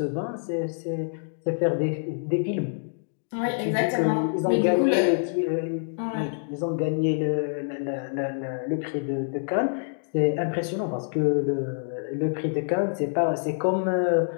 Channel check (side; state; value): right; silent; digital silence